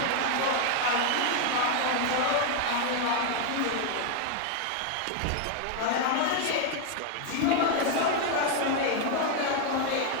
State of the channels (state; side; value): different; both; correlation 0.01